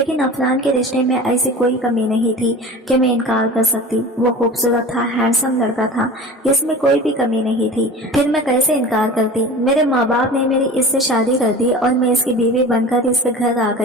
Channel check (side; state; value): both; normal; correlation 0.37